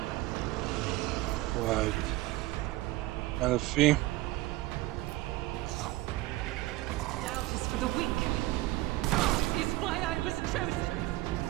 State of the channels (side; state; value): left; quieter; 18.3 dB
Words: Right. Elfie. Doubt is for the weak. Is why I was chosen.